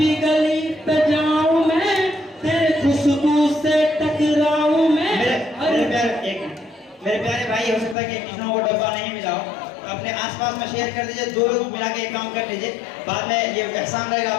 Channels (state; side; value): drops out; right; at 8.0 s